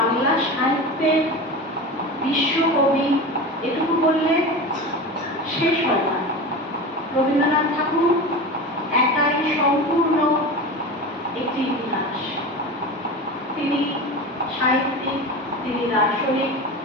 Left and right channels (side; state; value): both; normal; correlation 0.28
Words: সাহিত্যের বিশ্বকবি এটুকু বললে শেষ হয় না। রবীন্দ্রনাথ ঠাকুর একাই সম্পূর্ণ একটি ইতিহাস। তিনি সাহিত্যিক, তিনি দার্শনিক,